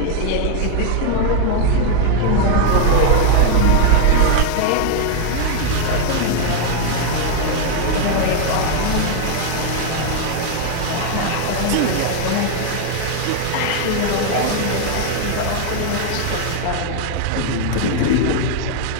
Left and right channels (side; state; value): both; different; correlation 0.01